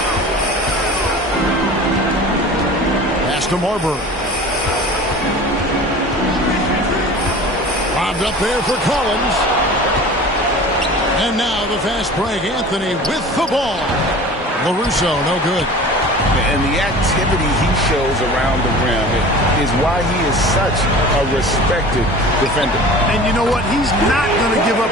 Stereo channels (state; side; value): normal; both; correlation 0.39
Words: Pass to Marbury. Lobbed up there for Collins. And now the fast break. Anthony with the ball. LaRusso, no good. And the activity he shows around the rim is why he is such a respected defender. And you know what? He's not going to give up